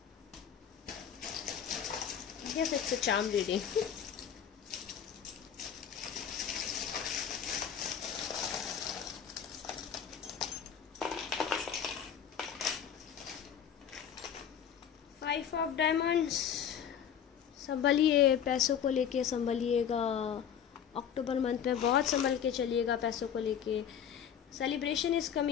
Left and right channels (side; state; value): right; quieter; 8.5 dB